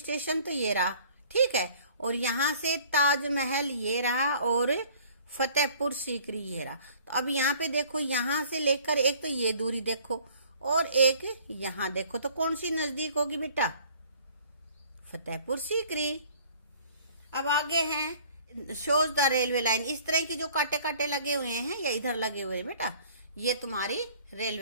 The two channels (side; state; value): both; inverted; correlation -0.53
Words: तो ये रहा, ठीक है, और यहाँ से ताजमहल ये रहा और फतेहपुर सीकरी ये रहा। तो अब यहाँ पे देखो, यहाँ से लेकर एक तो ये दूरी देखो और एक यहाँ देखो, तो कौन सी नजदीक होगी बेटा? फतेहपुर सीकरी। अब आगे हैं शोज द रेलवे लाइन। इस तरह की जो कांटे कांटे लगे हुए हैं या इधर लगे हुए हैं बेटा, ये तुम्हारी